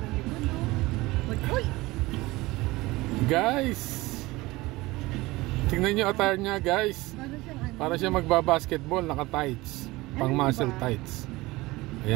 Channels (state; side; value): quieter; left; 20.5 dB